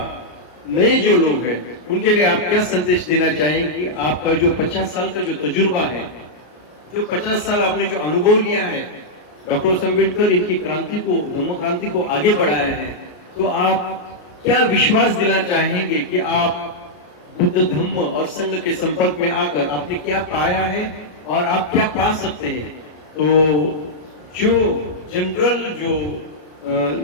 नए जो लोग हैं, उनके लिए आप क्या संदेश देना चाहेंगे? आपका जो 50 साल का जो तजुर्बा है, जो 50 साल आपने जो अनुभव लिया है, डॉक्टर अम्बेडकर इनकी क्रांति को, धम्म क्रांति को आगे बढ़ाया है, तो आप क्या विश्वास दिला चाहेंगे कि आप बुद्ध धम्म और संघ के संपर्क में आकर आपने क्या पाया है और आप क्या पा सकते हैं? तो जो जनरल जो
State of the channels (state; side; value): late; right; 33 ms